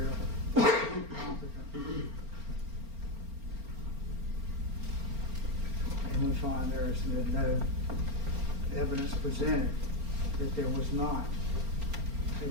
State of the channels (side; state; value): left; late; 4.4 ms